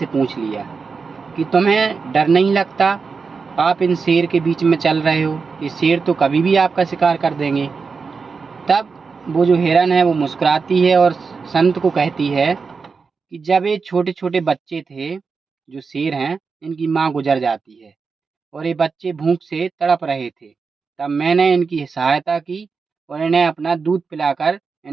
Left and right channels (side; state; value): left; quieter; 5.0 dB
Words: पूछ लिया कि तुम्हें डर नहीं लगता? आप इन शेर के बीच में चल रहे हो, ये शेर तो कभी भी आपका शिकार कर देंगे। तब वो जो हिरन है वो मुस्कुराती है और संत को कहती है कि जब ये छोटे छोटे बच्चे थे, जो शेर हैं, इनकी माँ गुजर जाती है और ये बच्चे भूख से तड़प रहे थे, तब मैंने इनकी सहायता की और इन्हें अपना दूध पिलाकर